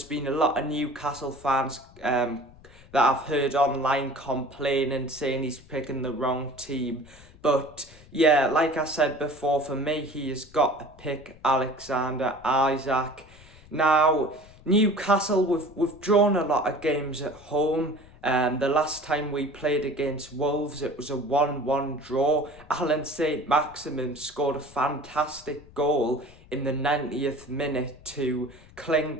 been a lot of Newcastle fans that I've heard online complaining, saying he's picking the wrong team. But yeah, like I said before, for me, he has got to pick Alexander Isak. Now, Newcastle, we've drawn a lot of games at home. The last time we played against Wolves, it was a 1-1 draw. Alan Saint-Maximin scored a fantastic goal in the 90th minute to cling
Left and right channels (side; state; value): left; noise; rumble, 23 dB below the sound